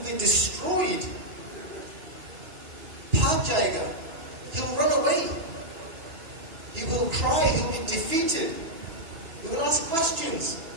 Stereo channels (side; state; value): left; late; 2.9 ms